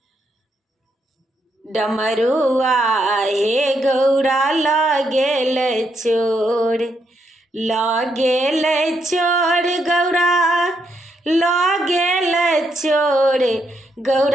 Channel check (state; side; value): normal; both; correlation 0.78